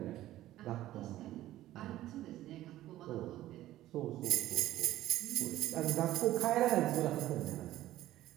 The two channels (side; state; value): left; quieter; 14.7 dB